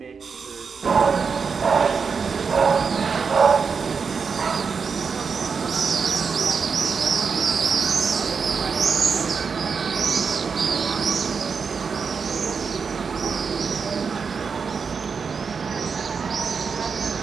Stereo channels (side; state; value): left; quieter; 5.6 dB